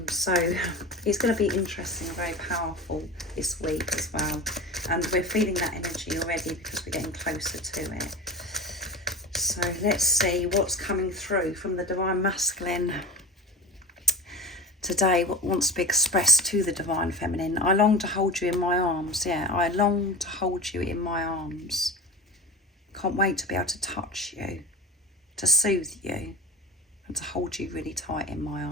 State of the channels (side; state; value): both; normal; correlation 0.32